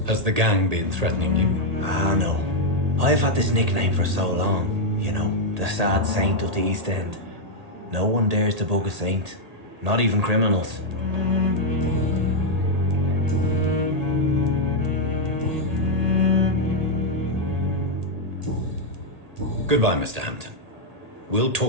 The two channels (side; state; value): left; late; 1.8 ms